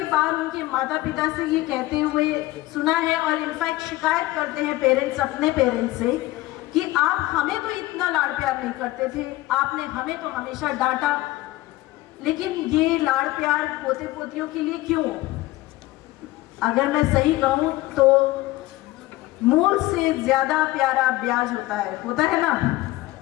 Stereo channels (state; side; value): quieter; right; 17.9 dB